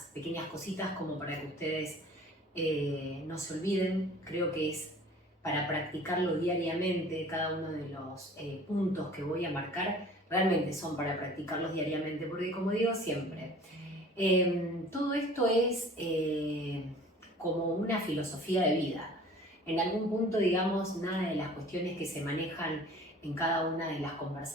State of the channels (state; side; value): normal; both; correlation 0.47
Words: pequeñas cositas como para que ustedes no se olviden. Creo que es para practicarlo diariamente. Cada uno de los puntos que voy a marcar realmente son para practicarlos diariamente, porque como digo siempre, todo esto es como una filosofía de vida. En algún punto, digamos, nada de las cuestiones que se manejan en cada una de las